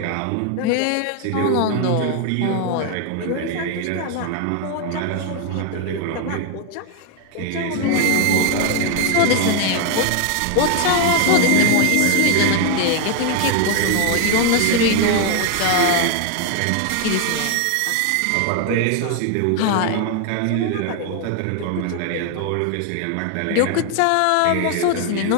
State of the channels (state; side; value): different; both; correlation 0.00